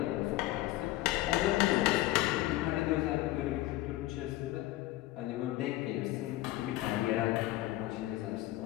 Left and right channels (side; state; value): right; quieter; 16.9 dB